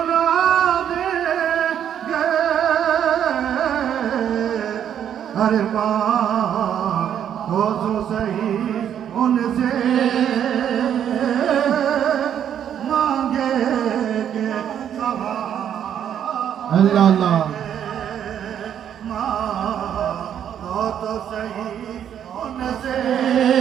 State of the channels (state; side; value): quieter; left; 9.4 dB